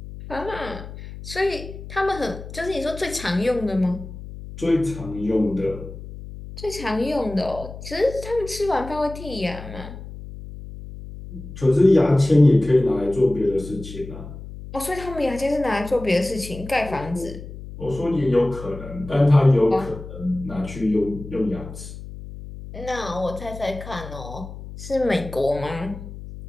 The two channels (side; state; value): left; noise; hum, 12 dB below the sound